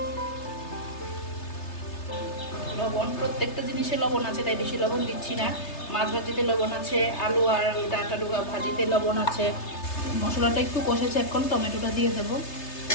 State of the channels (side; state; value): right; late; 3.3 ms